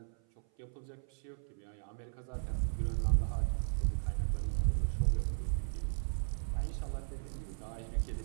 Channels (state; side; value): silent; left; 54 dB below the other